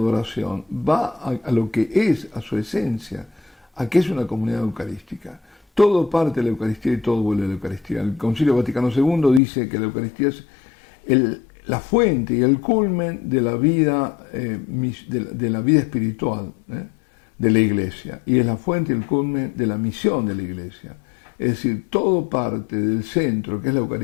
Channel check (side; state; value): right; drops out; at 9.4 s